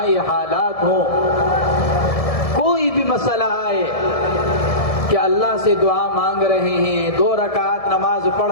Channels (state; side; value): late; right; 1.7 ms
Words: حالات ہوں، کوئی بھی مسئلہ آئے کہ اللہ سے دعا مانگ رہے ہیں، 2 رکعت نماز